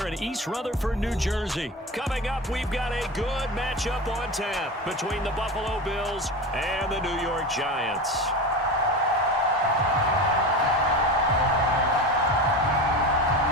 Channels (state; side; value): normal; both; correlation 0.27